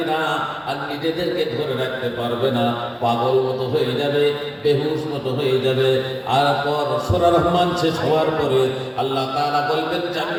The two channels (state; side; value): identical; both; correlation 1.00